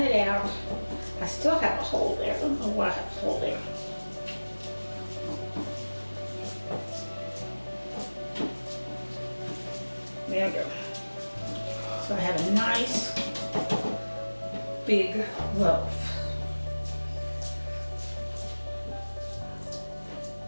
it out. I still have a hole there. I don't know why I have a hole there. There we go. So I have a nice big loaf.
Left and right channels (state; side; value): inverted; both; correlation -1.00